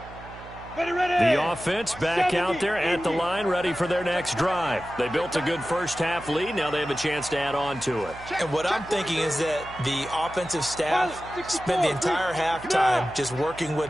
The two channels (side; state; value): right; noise; hum, 17 dB below the sound